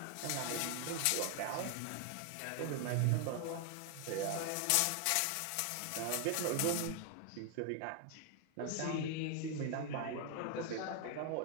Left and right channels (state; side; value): different; both; correlation 0.00